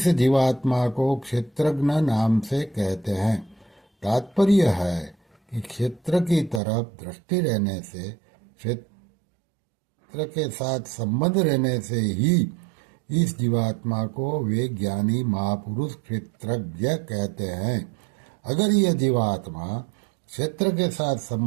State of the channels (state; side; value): drops out; left; at 6.6 s